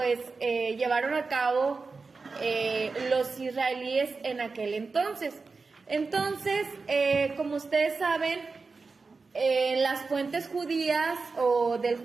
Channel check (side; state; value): left; quieter; 4.3 dB